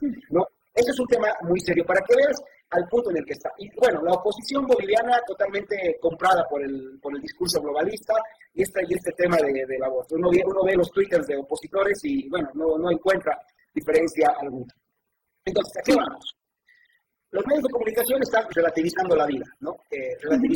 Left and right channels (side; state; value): both; identical; correlation 1.00